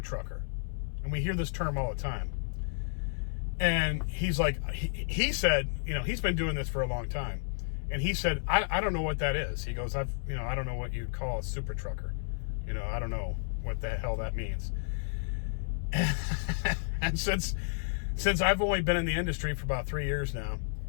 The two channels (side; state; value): right; silent; 57 dB below the other